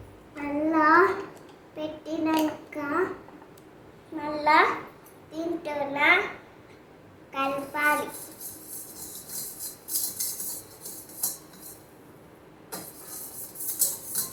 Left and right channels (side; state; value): both; identical; correlation 1.00